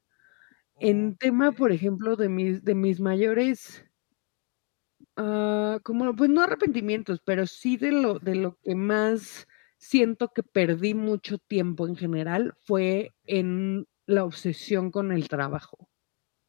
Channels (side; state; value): right; quieter; 35.7 dB